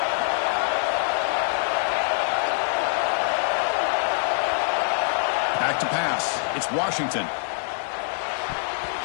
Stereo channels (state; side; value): silent; right; 58 dB below the other